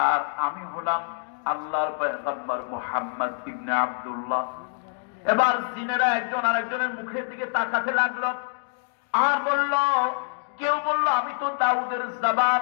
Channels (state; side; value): silent; right; 61 dB below the other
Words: আমি হলাম আল্লাহর পয়গম্বর মুহাম্মদ ইবনে আব্দুল্লাহ। এবার জিনেরা একজন আরেকজনের মুখের দিকে তাকাতে লাগলো, আর বলল, কেউ বলল আমি তো দাউদের